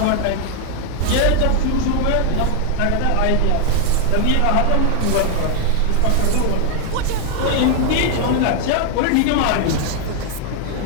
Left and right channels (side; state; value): both; different; correlation 0.00